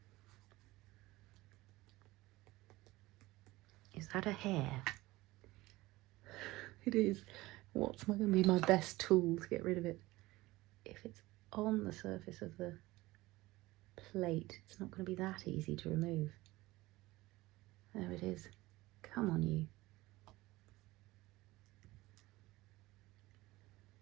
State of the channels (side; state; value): left; quieter; 19.3 dB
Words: Is that a hair? It is. What's going to be my best tool to get rid of it? If it's on the surface of the plate, it's not going to be that easy to remove. There it is. Come on, you.